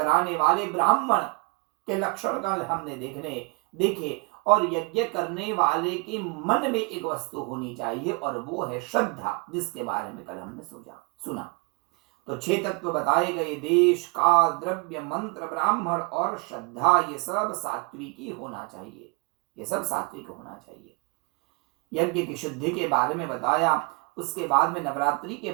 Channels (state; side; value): quieter; left; 33.3 dB